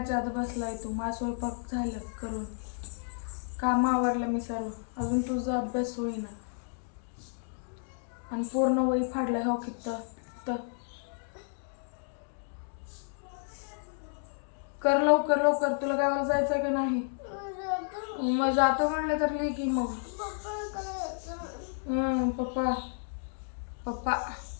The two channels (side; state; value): right; silent; digital silence